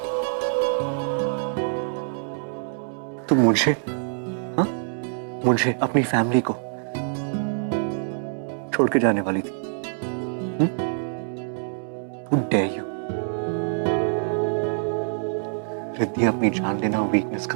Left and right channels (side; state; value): left; silent; 62 dB below the other